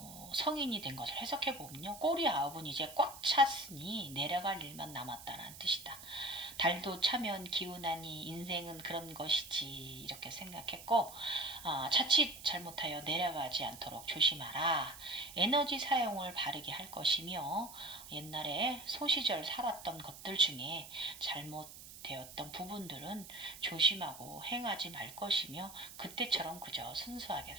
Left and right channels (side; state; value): right; noise; hiss, 15 dB below the sound